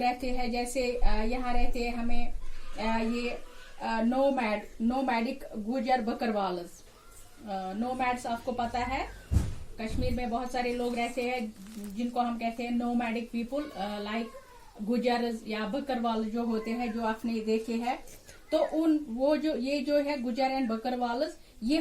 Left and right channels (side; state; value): both; identical; correlation 1.00